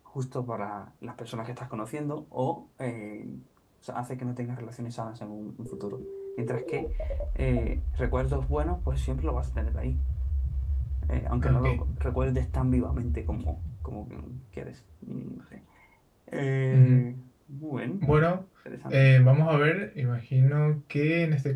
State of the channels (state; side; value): identical; both; correlation 1.00